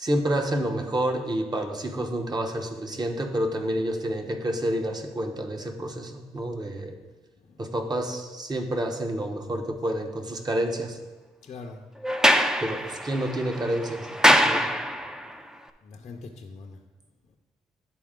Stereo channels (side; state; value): both; normal; correlation 0.80